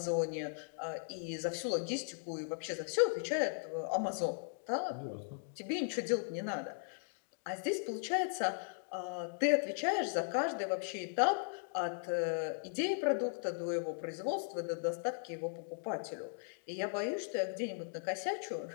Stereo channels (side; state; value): right; silent; digital silence